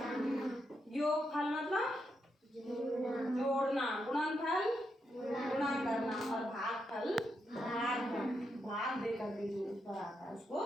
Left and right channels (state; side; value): normal; both; correlation 0.82